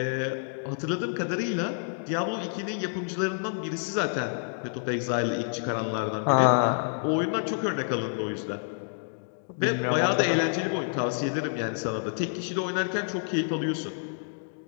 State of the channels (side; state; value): right; silent; digital silence